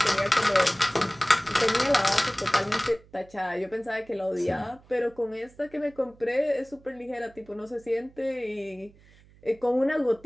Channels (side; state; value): right; noise; hum, 27 dB below the sound